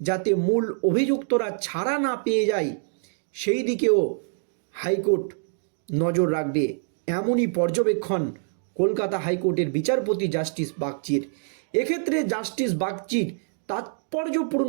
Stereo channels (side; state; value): left; silent; digital silence